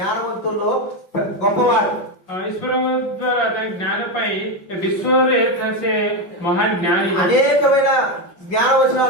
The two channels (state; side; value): late; right; 5.6 ms